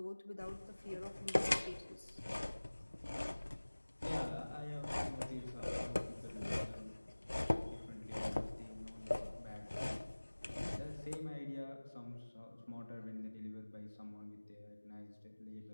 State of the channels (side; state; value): both; inverted; correlation -1.00